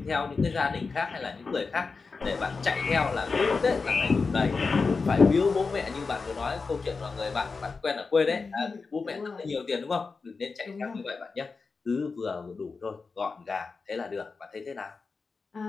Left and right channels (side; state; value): right; quieter; 4.5 dB